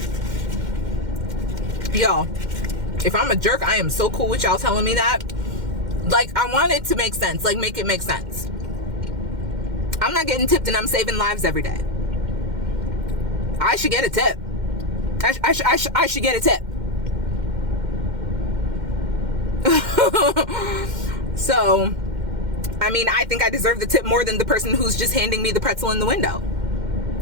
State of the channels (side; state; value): left; late; 2.1 ms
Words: Yo, if I'm a jerk, I am so cool with y'all telling me that. Like, I want it to make sense. Like, make it make sense. I'm not getting tipped and I'm saving lives every day. I should get a tip. I should get a tip. So, I mean, I think I deserve the tip more than the person who's just handing me the pretzel in the window.